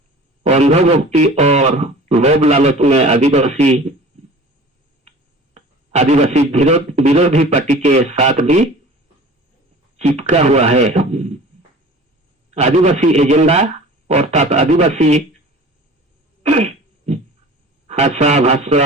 अंधभक्ति और लोभ लालच में आदिवासी विरोधी पार्टी के साथ भी चिपका हुआ है। आदिवासी एजेंडा अर्थात आदिवासी भाषा,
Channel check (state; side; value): normal; both; correlation 0.42